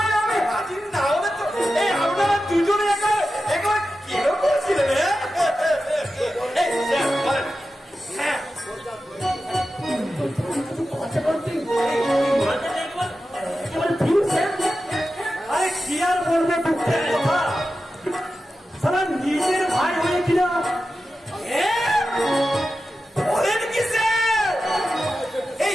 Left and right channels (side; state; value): both; normal; correlation 0.92